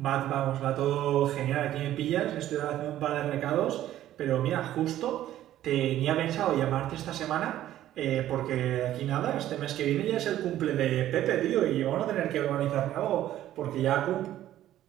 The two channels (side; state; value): left; quieter; 13.0 dB